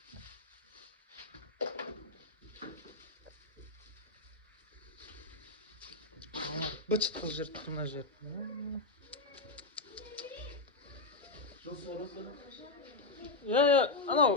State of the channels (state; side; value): quieter; right; 3.4 dB